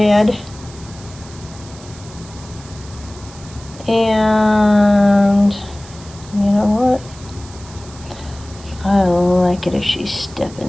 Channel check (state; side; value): noise; right; hiss, 20 dB below the sound